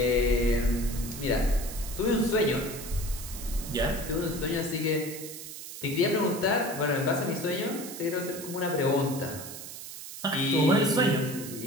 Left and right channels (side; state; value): right; noise; hiss, 11 dB below the sound